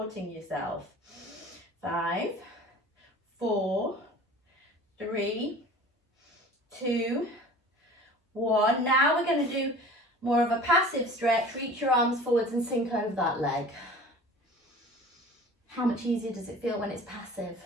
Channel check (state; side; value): normal; both; correlation 0.43